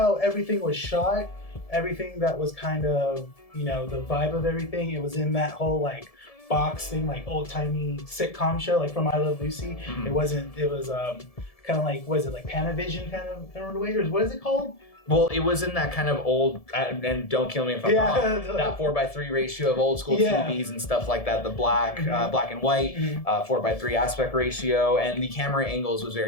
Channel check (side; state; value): right; late; 1.7 ms